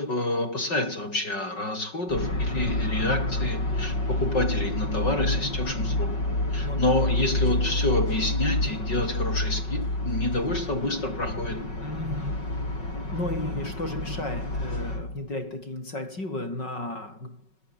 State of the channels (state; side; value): late; right; 5.4 ms